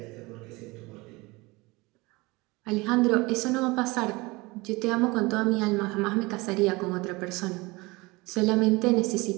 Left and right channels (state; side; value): quieter; left; 23.5 dB